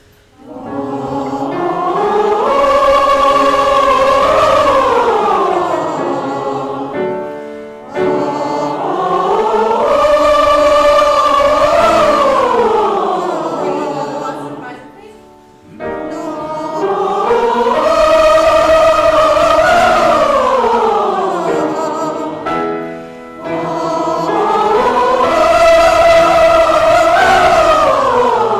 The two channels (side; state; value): both; identical; correlation 1.00